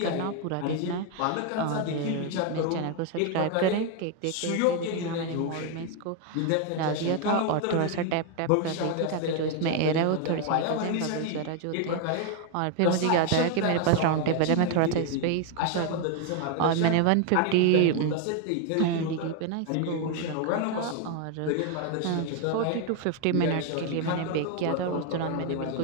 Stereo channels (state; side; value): different; both; correlation 0.01